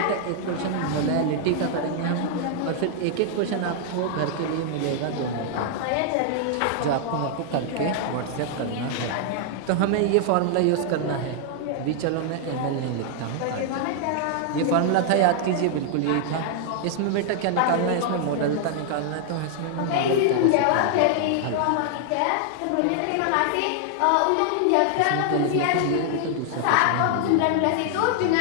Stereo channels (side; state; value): both; different; correlation 0.00